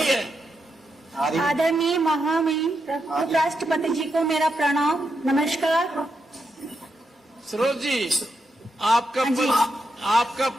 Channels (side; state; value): both; normal; correlation 0.84